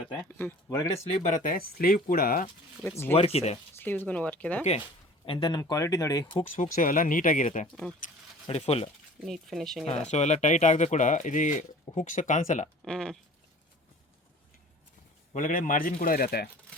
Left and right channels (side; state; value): both; normal; correlation 0.46